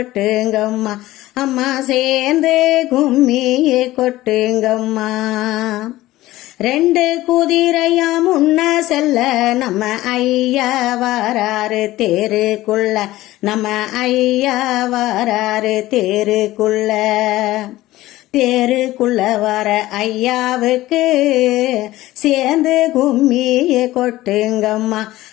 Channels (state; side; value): quieter; right; 16.7 dB